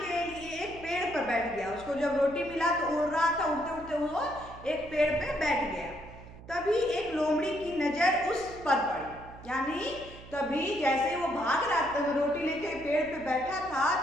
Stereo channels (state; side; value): noise; right; hum, 17 dB below the sound